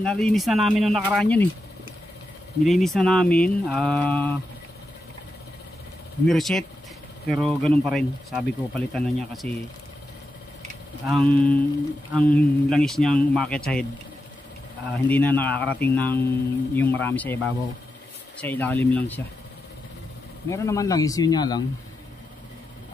na namin nung nakaraan yun eh. Nilinis na namin. Nireset. Pero ganun pa rin. Sabi ko palitan na niya kasi ang langis niyang umakyat sa head, hindi na nakakarating ng yung marami sa ibabaw, sa ilalim lang siya. Meron naman langis, yun nga lang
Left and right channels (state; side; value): normal; both; correlation 0.88